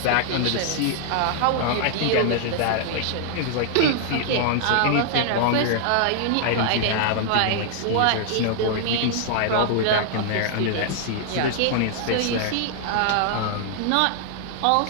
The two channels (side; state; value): both; different; correlation -0.01